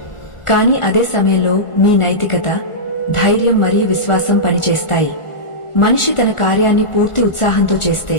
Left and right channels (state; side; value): late; right; 1.4 ms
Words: కానీ అదే సమయంలో మీ నైతికత, ధైర్యం మరియు విశ్వాసం పనిచేస్తాయి. మనిషి తన కార్యాన్ని పూర్తి ఉత్సాహంతో చేస్తే